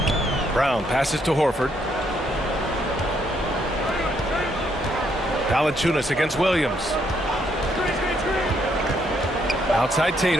Brown passes to Horford. Valanciunas against Williams. Outside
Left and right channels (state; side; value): normal; both; correlation 0.73